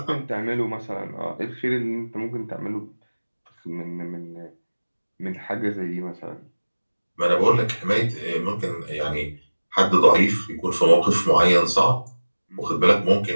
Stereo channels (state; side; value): inverted; both; correlation -1.00